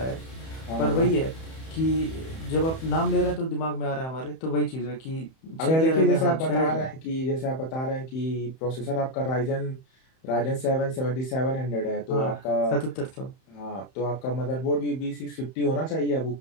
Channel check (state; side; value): late; right; 31 ms